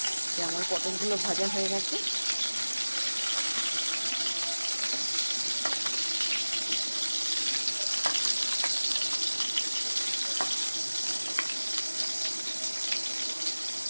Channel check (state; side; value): inverted; both; correlation -1.00